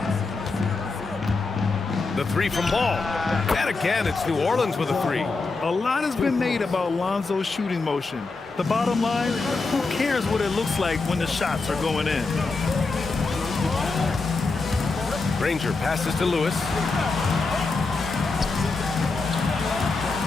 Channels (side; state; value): right; quieter; 3.9 dB